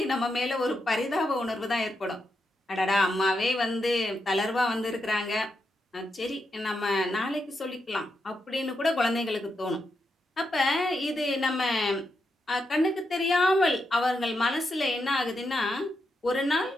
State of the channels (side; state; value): both; normal; correlation 0.84